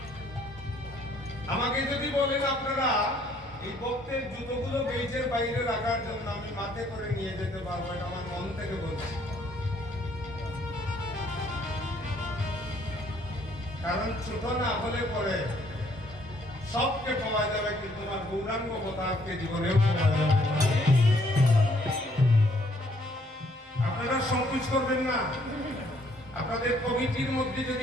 আমাকে যদি বলেন আপনারা এই ভক্তের জুতোগুলো গেইটের বাইরে রাখার জন্য, আমি মাথে করে নিয়ে যেতে পারবো, এটা আমার মন থেকে বলছি। কারণ ছোট না হলে পরে সবকে পাওয়া যাবে, কিন্তু আমার গৌরাঙ্গ অবতারকে জীবনেও পাওয়া যাবে। আপনারা সংকোচ করবেন না। আপনাদের কমিটির মধ্যে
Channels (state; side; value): normal; both; correlation 0.65